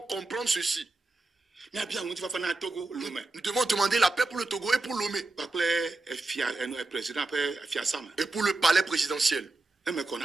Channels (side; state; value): left; quieter; 3.2 dB